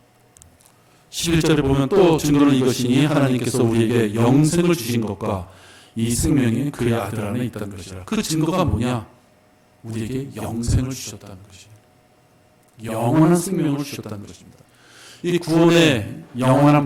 11절에 보면 또 증거는 이것이니 하나님께서 우리에게 영생을 주신 것과 이 생명이 그의 아들 안에 있다는 것이라. 그 증거가 뭐냐? 우리에게 영생을 주셨다는 것이에요. 영원한 생명을 주셨다는 것입니다. 이 구원의 영원한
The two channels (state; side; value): identical; both; correlation 1.00